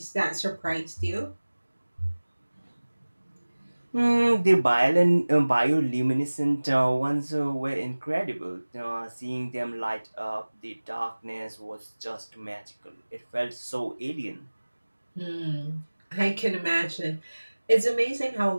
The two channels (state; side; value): inverted; both; correlation -1.00